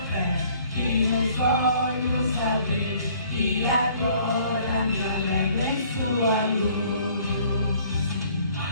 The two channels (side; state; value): both; inverted; correlation -0.58